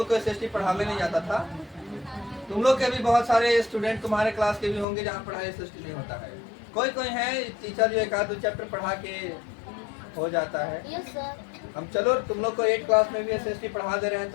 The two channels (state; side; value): drops out; right; at 4.9 s